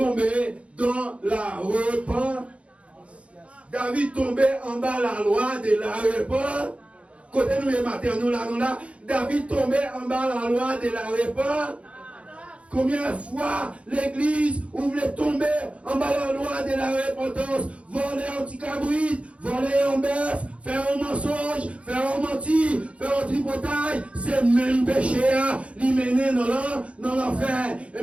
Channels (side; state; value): left; late; 0.062 ms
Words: dans la repentance. David tombé en bas la loi de la repentance. Côté nous les matin, nous là, David tombé en bas la loi de la repentance. Combien de fois l'église voulait tomber en bas la loi de la repentance, voler un petit cabrit, voler un bœuf, faire un mensonge, faire un menti, faire un tripotage, c'est le même péché à l'y mener dans l'enfer. Et